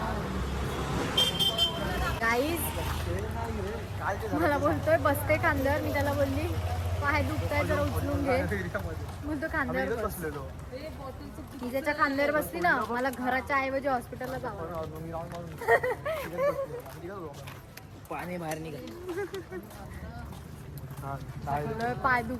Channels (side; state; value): both; identical; correlation 1.00